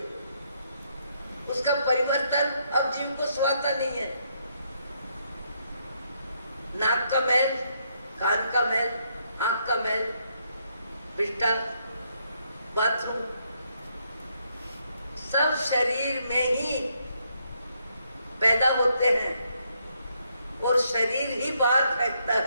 उसका परिवर्तन अब जीव को स्वाता नहीं है। नाक का मैल, कान का मैल, आंख का मैल, बिस्टा, बाथरूम, सब शरीर में ही पैदा होते हैं और शरीर ही बाहर फेंकता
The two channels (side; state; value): both; inverted; correlation -0.75